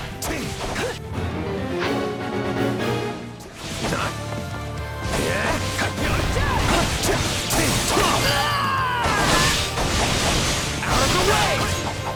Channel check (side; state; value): both; identical; correlation 1.00